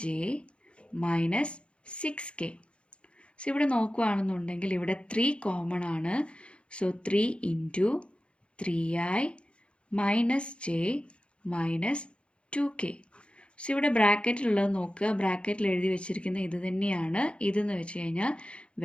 minus 6k. So ഇവിടെ നോക്കുകയാണെന്നുണ്ടെങ്കിൽ ഇവിടെ 3 common ആണ്. So 3 into 3i minus J minus 2k. So ഇവിടെ ബ്രാക്കറ്റിലുള്ളത് നോക്കുക. ബ്രാക്കറ്റിൽ എഴുതി വെച്ചിരിക്കുന്ന ഇത് തന്നെയാണ്. ഇതെന്ന് വെച്ച് കഴിഞ്ഞാൽ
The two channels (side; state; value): right; late; 0.058 ms